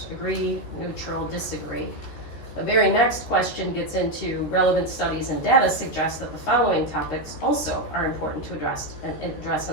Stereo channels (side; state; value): right; late; 14 ms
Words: Agree, neutral, disagree? The very next question gets into relevant studies and data suggest that the following topics also are important to address